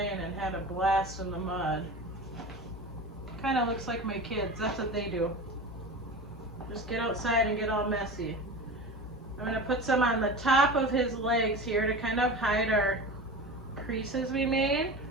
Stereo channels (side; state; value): both; normal; correlation 0.31